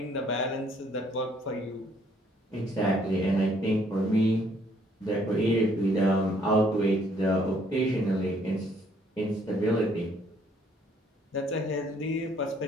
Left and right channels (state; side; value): normal; both; correlation 0.65